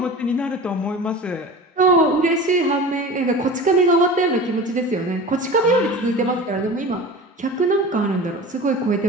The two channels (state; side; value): normal; both; correlation 0.35